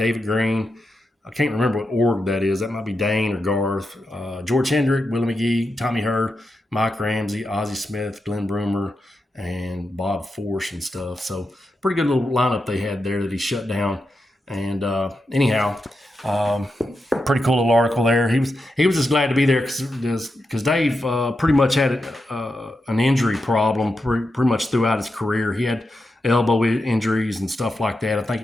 Green. I can't remember what org that is. That might be Dane or Garth. George Hendrick, Willie McGee, Tommy Hurd, Mike Ramsey, Ozzie Smith, Glenn Broomer, and Bob Force and stuff. So pretty good little lineup they had there that he shut down. And anyhow, pretty cool little article there. He was just glad to be there because Dave pretty much had an injury problem pretty much throughout his career. He had elbow injuries and stuff like that. I think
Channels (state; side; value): normal; both; correlation 0.87